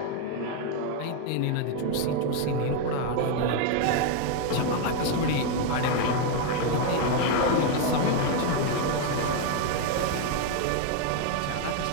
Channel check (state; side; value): different; both; correlation 0.01